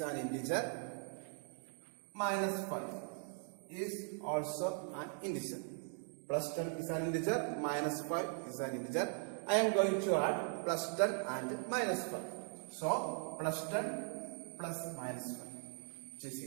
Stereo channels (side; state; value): left; silent; 51 dB below the other